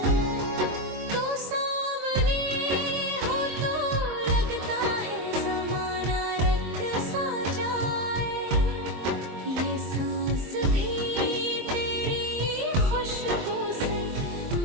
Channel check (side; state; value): left; late; 23 ms